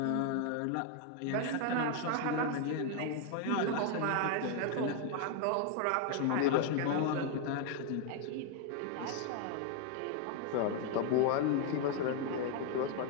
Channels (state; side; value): different; both; correlation 0.01